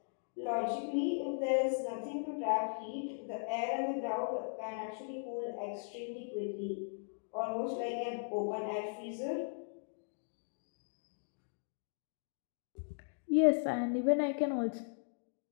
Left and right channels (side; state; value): right; silent; digital silence